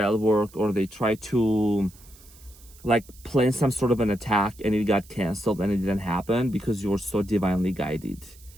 work, or they try to like plan some sort of an attack, and it got canceled and it didn't happen because you're so divinely guided.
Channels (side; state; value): right; noise; hiss, 24 dB below the sound